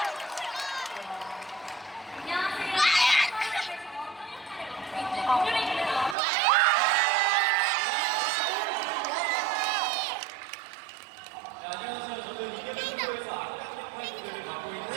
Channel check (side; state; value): left; drops out; at 6.2 s